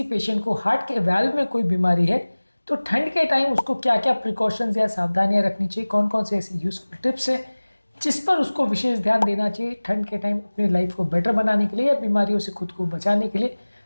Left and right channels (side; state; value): both; inverted; correlation -1.00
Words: पेशेंट को हार्ट के वाल्व में कोई बीमारी है तो ठंड के टाइम उसको क्या क्या प्रिकॉशंस या सावधानियां रखनी चाहिए, कौन कौन से ऐसे यूजफुल टिप्स है जिस पर उसको विशेष ध्यान देना चाहिए ठंड के टाइम अपनी लाइफ को बेटर बनाने के लिए या बीमारियों से खुद को बचाने के लिए,